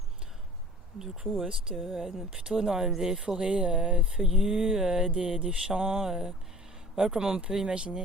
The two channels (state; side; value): normal; both; correlation 0.47